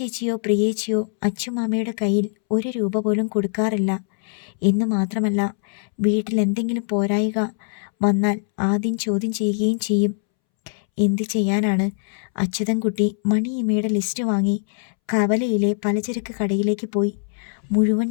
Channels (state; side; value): silent; right; 64 dB below the other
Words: പ്രിയേച്ചിയോ അച്ഛമാമയുടെ കയ്യിൽ 1 രൂപ പോലും കൊടുക്കാറില്ല എന്ന് മാത്രമല്ല, വീട്ടിൽ എന്തെങ്കിലും പോരായിക വന്നാൽ ആദ്യം ചോദ്യം ചെയ്യുകയും ചെയ്യും. എന്ത് ചെയ്യാനാണ്? അച്യുതൻകുട്ടി മണിയമ്മയുടെ ലിസ്റ്റ് വാങ്ങി കവലയിലെ പലചരക്ക് കടയിലേക്ക് പോയി. മുഴുവൻ